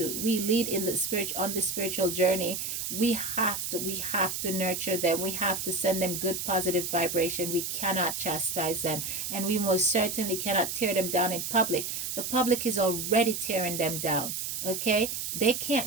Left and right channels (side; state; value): right; noise; hiss, 4 dB below the sound